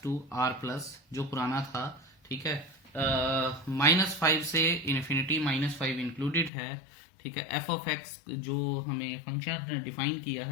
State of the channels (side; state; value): right; drops out; at 6.5 s